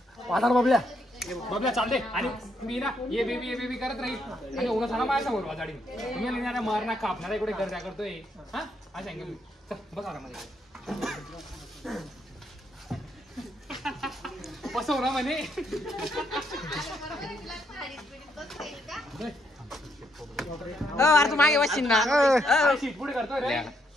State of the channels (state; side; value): normal; both; correlation 0.75